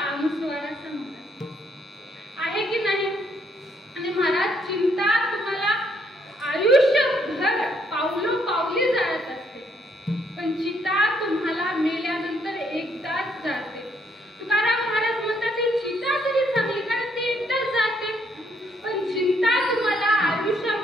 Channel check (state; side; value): normal; both; correlation 0.70